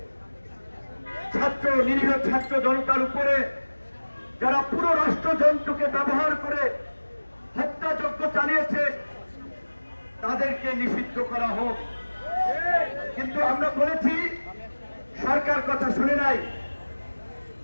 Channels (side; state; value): both; inverted; correlation -1.00